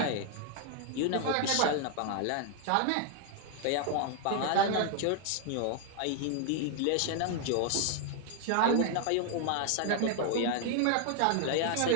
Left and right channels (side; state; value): both; different; correlation 0.00